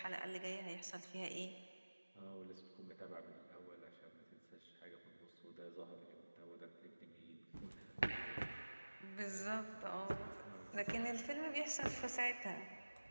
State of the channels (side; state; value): both; inverted; correlation -1.00